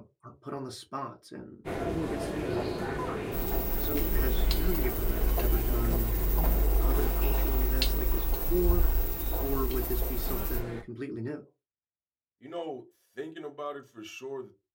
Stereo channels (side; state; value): both; identical; correlation 1.00